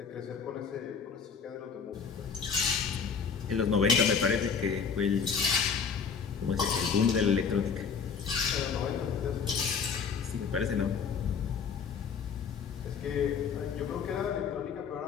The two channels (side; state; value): right; quieter; 6.1 dB